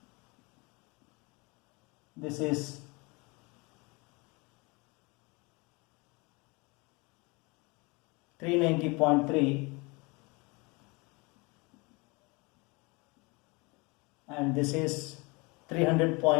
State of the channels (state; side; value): quieter; right; 27.4 dB